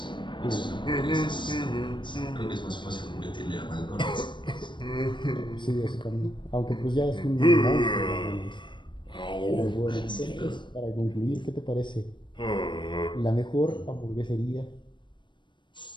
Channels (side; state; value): right; late; 0.23 ms